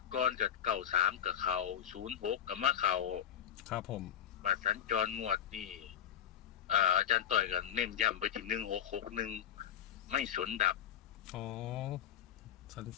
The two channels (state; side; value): quieter; right; 9.8 dB